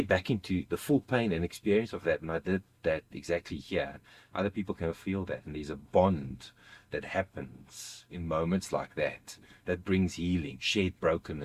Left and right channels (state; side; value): identical; both; correlation 1.00